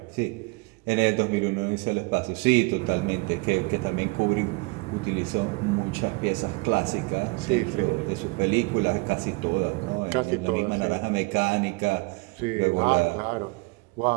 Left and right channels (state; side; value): quieter; left; 27.0 dB